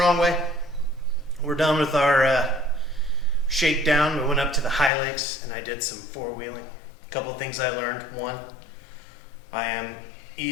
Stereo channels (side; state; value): right; drops out; at 4.9 s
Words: Way. We're done with our shakedown. We went up to the High Lakes and I did some four-wheeling. A couple of things I learned. One, I am